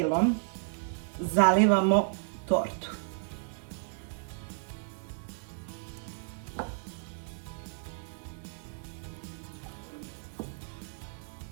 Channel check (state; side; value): silent; left; digital silence